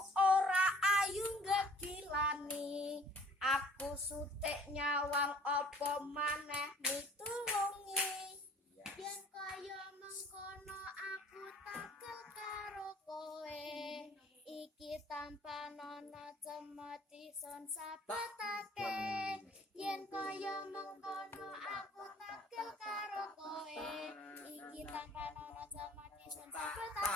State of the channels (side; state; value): both; normal; correlation 0.53